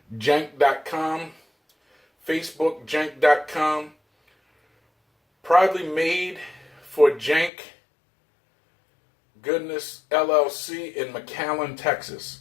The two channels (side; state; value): right; drops out; at 7.5 s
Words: Facebook jank.com. Proudly made for Jank Goodness LLC in McAllen,